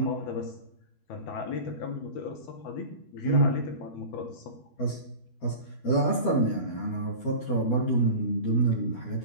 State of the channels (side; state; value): right; late; 12 ms